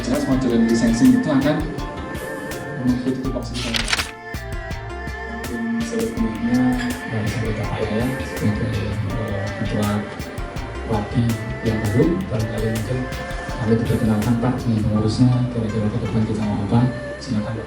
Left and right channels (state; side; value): identical; both; correlation 1.00